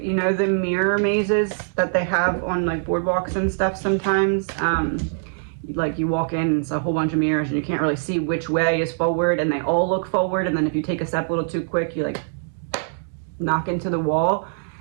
you know, the mirror mazes that they have on like boardwalks and stuff sometimes. Like you walk in and it's a whole bunch of mirrors and you can't really see which way is forward, and they all look forward, and then if you take a step a little too quick, you like knock into the wall.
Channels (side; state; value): left; silent; digital silence